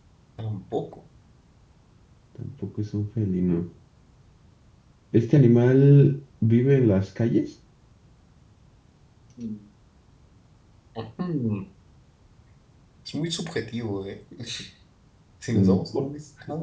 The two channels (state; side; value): identical; both; correlation 1.00